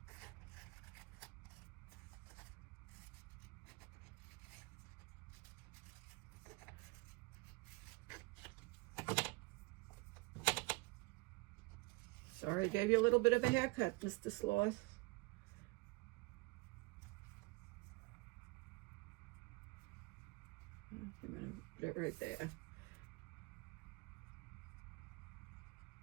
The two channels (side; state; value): left; quieter; 25.2 dB